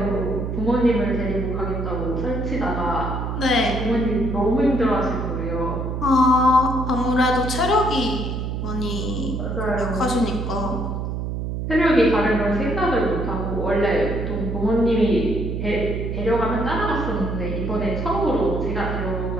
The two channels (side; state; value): right; noise; hum, 3 dB below the sound